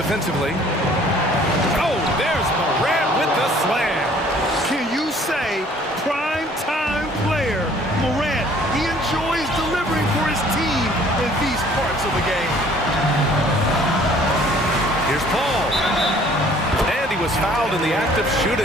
Oh, there's Morant with the slam. Can you say prime time player Morant? He enjoys delivering for his team in these parts of the game. Here's Paul. And he was fouled in the act of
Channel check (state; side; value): normal; both; correlation 0.56